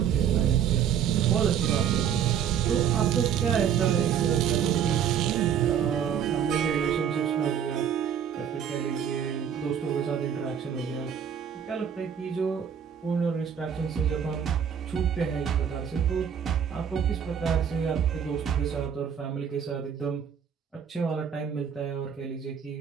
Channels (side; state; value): left; quieter; 8.2 dB